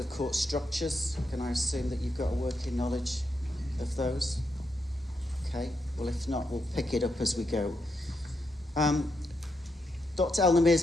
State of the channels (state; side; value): normal; both; correlation 0.82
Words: court structures, can I assume that you've got a working knowledge of those? Okay, well, if not, we'll pick it up as we go. Dr. El-Nimr